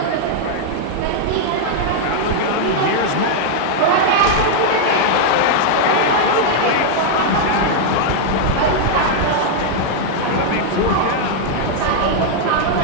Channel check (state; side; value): different; both; correlation -0.01